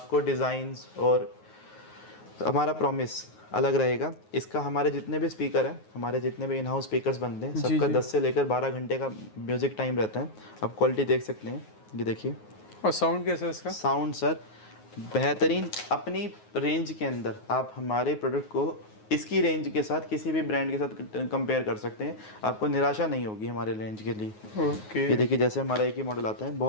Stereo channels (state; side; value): late; right; 9.4 ms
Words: डिज़ाइंस और हमारा प्रॉमिस अलग रहेगा। इसका हमारे जितने भी स्पीकर हैं, हमारे जितने भी इन हाउस स्पीकर्स बनते हैं, सबका 10 से लेकर 12 घंटे का म्यूज़िक टाइम रहता है। आप क्वालिटी देख सकते हैं, ये देखिए। और साउंड कैसा है इसका? साउंड सर बेहतरीन, अपनी रेंज के अंदर आप हमारे प्रोडक्ट को इसकी रेंज के साथ किसी भी ब्रांड के साथ कंपेयर कर सकते हैं, आपको निराशा नहीं होगी हमारे रेंज के लिए। ओके। ये देखिए जैसे हमारा एक ही मॉडल आता है,